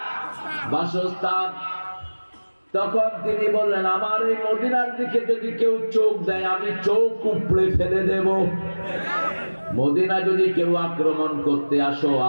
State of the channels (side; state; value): both; inverted; correlation -1.00